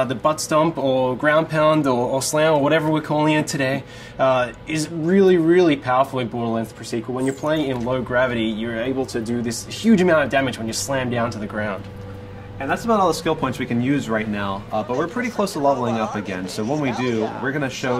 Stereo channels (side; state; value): both; identical; correlation 1.00